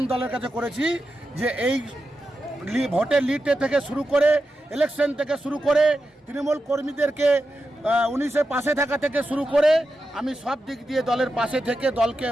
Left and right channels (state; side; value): normal; both; correlation 0.89